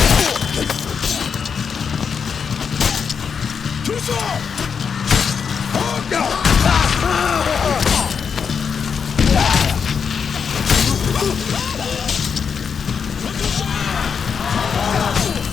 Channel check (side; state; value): right; quieter; 6.4 dB